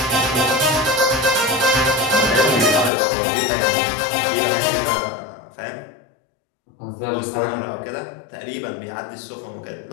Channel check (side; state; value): right; drops out; at 2.9 s